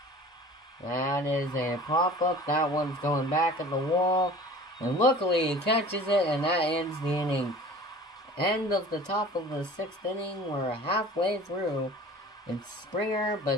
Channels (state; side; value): normal; both; correlation 0.43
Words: That is a pop-up. That one's going back at the wall. And luckily he catches it, and that ends the inning. End of the top of the 6th inning. We're halfway through. It's Springer,